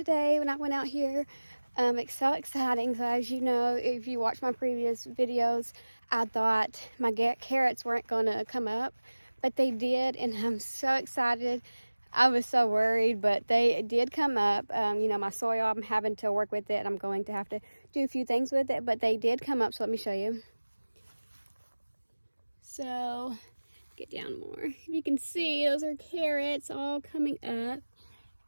when I went out here. It's so exciting. So as you know, if you watch my previous videos, I thought my carrots weren't gonna come up, but they did, and I'm so excited. I was so worried, but they did come up. You know, my soil, I'm having to work with it, and I'm going to have to do a few things with it, but they did come up, so let me show you. So, get down more. If you can see, those are carrots all coming up.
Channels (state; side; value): inverted; both; correlation -1.00